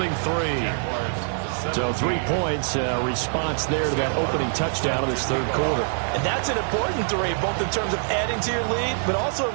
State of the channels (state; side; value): silent; left; digital silence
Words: 3. So 3 points, response there to that opening touchdown of this 3rd quarter. And that's an important 3, both in terms of adding to your lead, but also